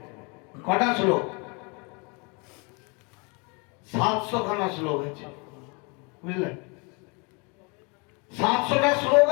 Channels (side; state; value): right; quieter; 31.5 dB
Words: কটা শ্লোক? 700 খানা শ্লোক আছে, বুঝলেন? 700টা শ্লোক